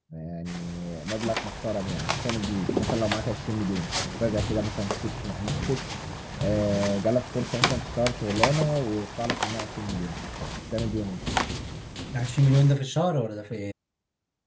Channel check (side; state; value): both; identical; correlation 1.00